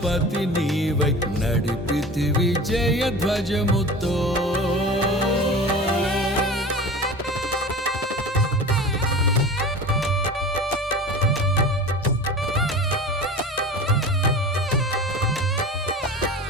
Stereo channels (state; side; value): normal; both; correlation 0.35